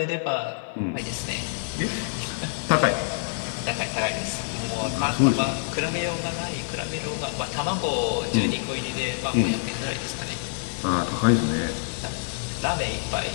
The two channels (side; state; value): right; silent; digital silence